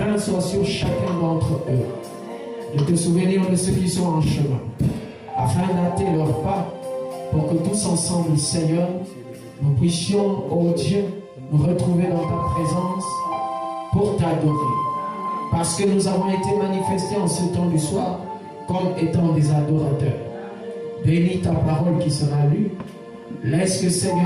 soit sur chacun d'entre eux, de te souvenir de ceux qui sont en chemin, afin d'hâter leurs pas, pour que tous ensemble, Seigneur, nous puissions, ô Dieu, nous retrouver dans ta présence pour t'adorer. Parce que nous avons été manifestés en ce temps du soir comme étant des adorateurs. Bénis ta parole qui sera lue. Laisse que,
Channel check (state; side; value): identical; both; correlation 1.00